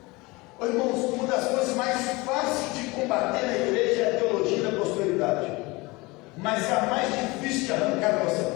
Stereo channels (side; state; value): right; quieter; 23.6 dB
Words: Oh, irmãos, uma das coisas mais fáceis de combater na igreja é a teologia da prosperidade, mas é a mais difícil de arrancar de